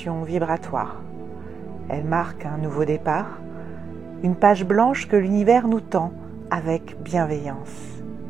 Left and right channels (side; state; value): left; quieter; 6.2 dB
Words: vibratoire. Elle marque un nouveau départ, une page blanche que l'univers nous tend avec bienveillance.